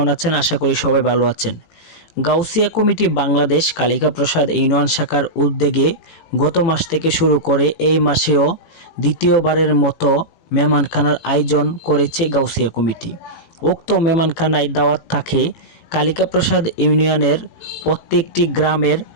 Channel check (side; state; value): right; late; 18 ms